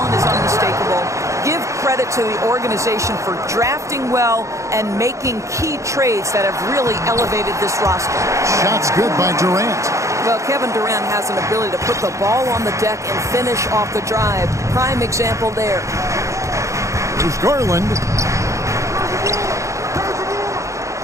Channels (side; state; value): left; late; 0.15 ms